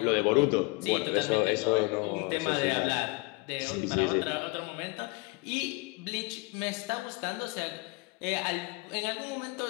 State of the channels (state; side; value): quieter; right; 25.9 dB